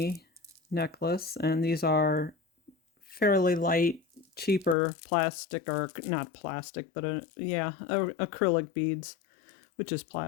necklace, and these are fairly light, cheaper plastic, or not plastic, but acrylic beads, which is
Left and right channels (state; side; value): drops out; right; at 4.8 s